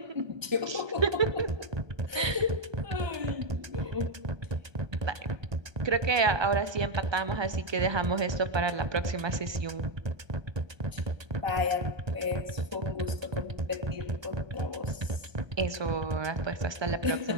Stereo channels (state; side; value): late; left; 1.2 ms